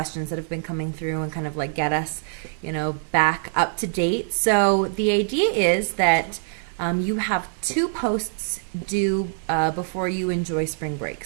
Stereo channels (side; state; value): left; silent; 63 dB below the other